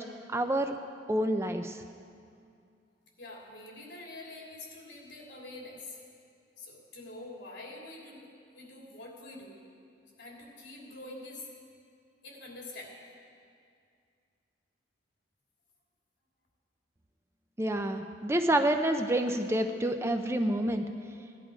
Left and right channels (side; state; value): both; normal; correlation 0.71